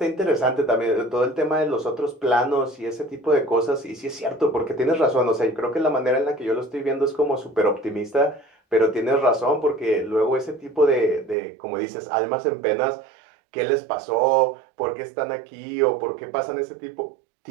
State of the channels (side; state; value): left; drops out; at 11.4 s